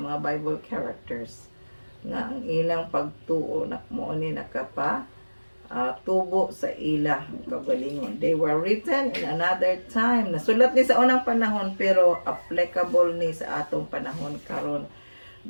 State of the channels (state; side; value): inverted; both; correlation -1.00